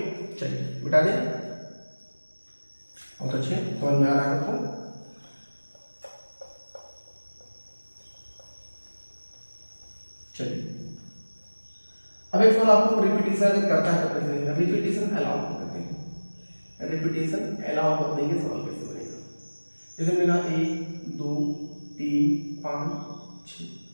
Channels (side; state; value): both; inverted; correlation -1.00